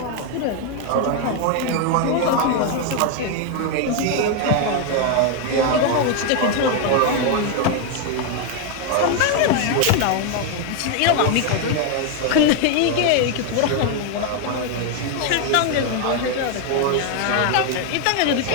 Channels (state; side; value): different; both; correlation 0.01